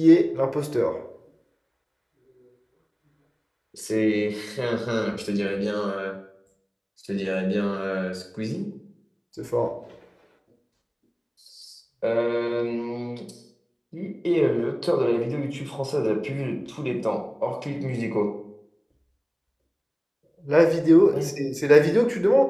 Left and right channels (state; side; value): identical; both; correlation 1.00